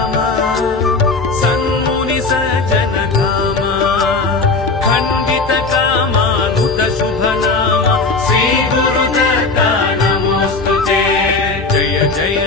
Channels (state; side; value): quieter; right; 3.8 dB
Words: सन्मुनि सज्जन धामा खण्डित कामानुत शुभ नाम श्री गुरुदत्ता जय